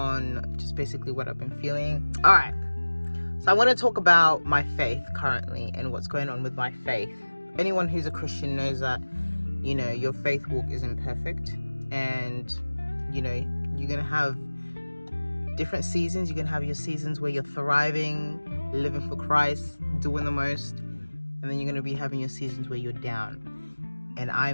just basically what I've been feeling. All right. So I want to talk about my faith currently and what's going on with my faith. Anyone who's a Christian knows that, you know, your faith walk isn't perfect, and, you know, you're going to have different seasons. You're going to have your seasons where you're thriving, living for Christ, doing the most, and then you're going to be having your seasons where you're down. And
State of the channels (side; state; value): both; inverted; correlation -1.00